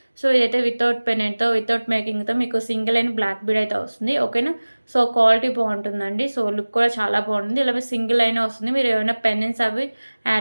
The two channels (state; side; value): inverted; both; correlation -1.00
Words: సో ఇదైతే వితౌట్ పెనెంట్తో, వితౌట్ మేకింగ్తో మీకు సింగిల్ లైన్ బ్లాక్ బీడ్ అయితే వస్తుంది. ఓకేనా. సో క్వాలిటీ బాగుంటుందండి. సో లుక్ కూడా చాలా బాగుంటుంది. ఇలా సింగిల్ లైన్ వస్తుంది. మీరు ఏమైనా పెన్నెన్స్ అవి